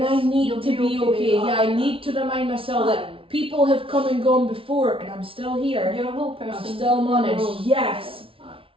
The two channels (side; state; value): left; late; 0.26 ms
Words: I need to be okay. I need to remind myself that people have come and gone before, and I'm still here. You're a whole person. I'm still managed. Yes.